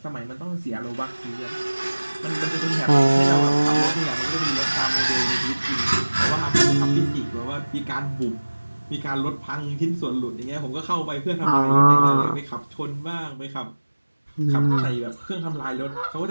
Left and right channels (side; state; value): both; inverted; correlation -1.00